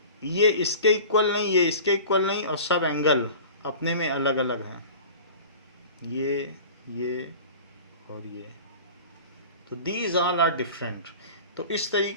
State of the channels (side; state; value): both; inverted; correlation -0.39